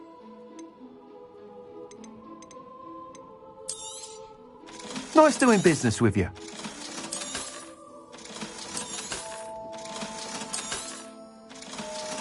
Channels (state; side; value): identical; both; correlation 1.00